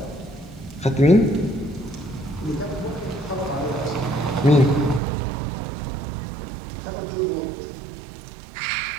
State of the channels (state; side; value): drops out; left; at 5.0 s